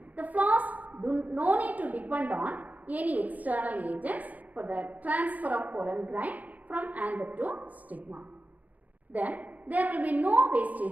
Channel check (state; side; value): late; left; 0.078 ms